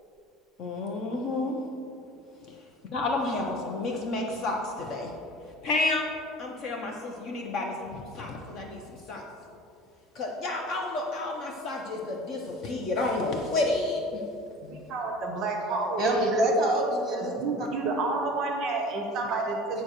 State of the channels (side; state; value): both; normal; correlation 0.41